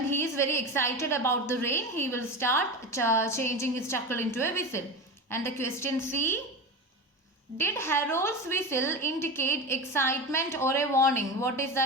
he is very excited about the rain, he will start changing his chuckle into a whistle. And the question C, did Harold's whistle indicate excitement or a warning? What is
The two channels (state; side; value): normal; both; correlation 0.25